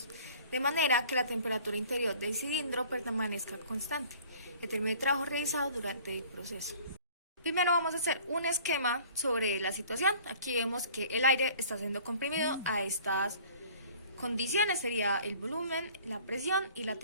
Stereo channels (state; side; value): inverted; both; correlation -0.50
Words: de manera que la temperatura interior del cilindro permanezca constante. Determine el trabajo realizado durante el proceso. Primero vamos a hacer un esquema sobre la situación. Aquí vemos que el aire está siendo comprimido a estas condiciones, sería el volumen, la presión y la